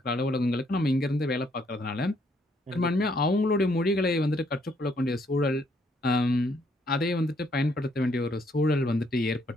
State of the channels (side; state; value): both; normal; correlation 0.70